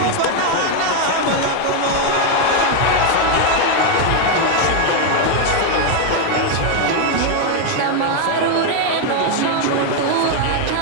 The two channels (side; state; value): both; different; correlation 0.01